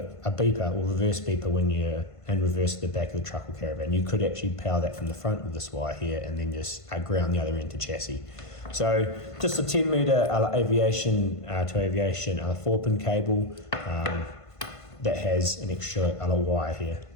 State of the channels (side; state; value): right; late; 1.5 ms